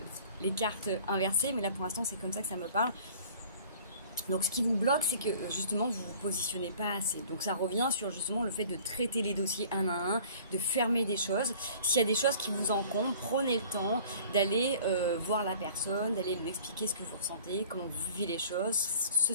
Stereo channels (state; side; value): inverted; both; correlation -0.48